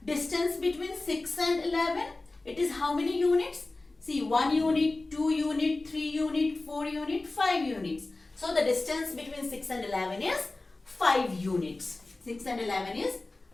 distance between 6 and 11? It is how many units? See, 1 unit, 2 unit, 3 unit, 4 unit, 5 units. So the distance between 6 and 11 is 5 units. 6 and 11 is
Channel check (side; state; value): right; quieter; 3.1 dB